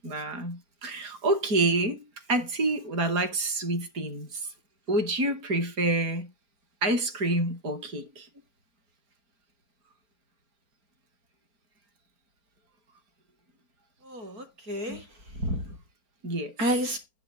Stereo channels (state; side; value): late; left; 4.4 ms